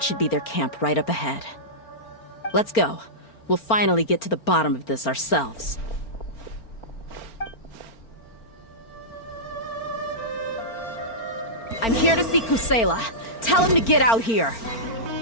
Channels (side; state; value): right; late; 4.4 ms